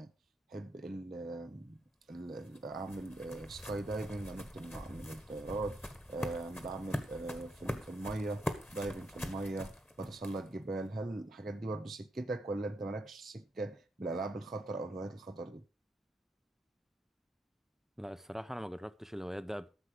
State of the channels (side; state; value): both; normal; correlation 0.81